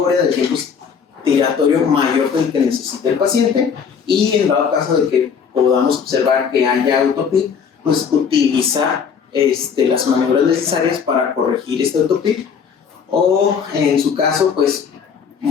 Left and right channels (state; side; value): quieter; right; 6.7 dB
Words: del tiempo respiratorio mayor del que necesita el paciente, y en dado caso de que podamos observar que haya autopip, pues utilizar las maniobras necesarias para corregir este autopip, o en su caso pues